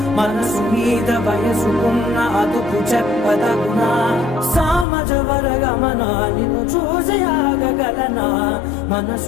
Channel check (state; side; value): drops out; right; at 4.9 s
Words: మనసు మీద వయసుకున్న అదుపు చెప్పదగునా సామజవర గమనా నిన్ను చూసి ఆగగలనా